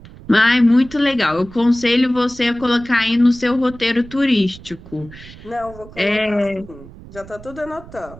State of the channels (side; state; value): right; noise; rumble, 19 dB below the sound